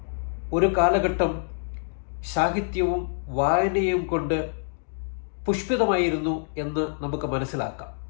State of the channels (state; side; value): silent; right; digital silence